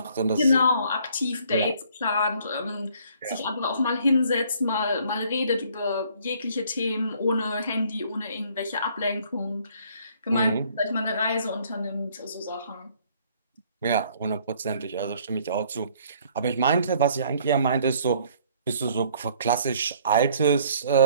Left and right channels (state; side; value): inverted; both; correlation -0.60